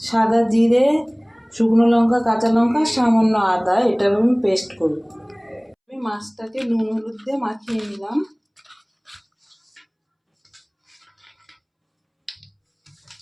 সাদা জিরে, শুকনো লঙ্কা, কাঁচা লঙ্কা, সামান্য আদা। এটা আমি পেস্ট করব। আমি মাছটাকে নুন হলুদ দিয়ে মাখিয়ে নিলাম।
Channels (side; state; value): both; identical; correlation 1.00